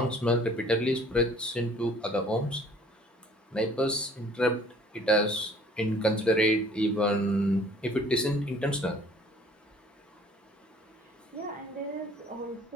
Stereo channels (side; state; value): both; normal; correlation 0.54